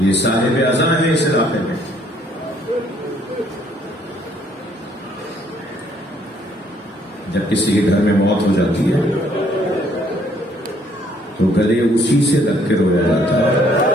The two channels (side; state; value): both; normal; correlation 0.65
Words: صاحب اعزاں ہیں اس علاقے میں۔ جب کسی کے گھر میں موت ہو جاتی ہے تو گلے اسی سے لگ کے رویا جاتا ہے